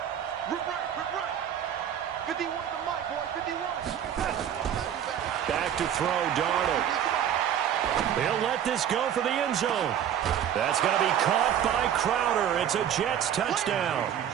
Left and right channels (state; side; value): quieter; left; 9.7 dB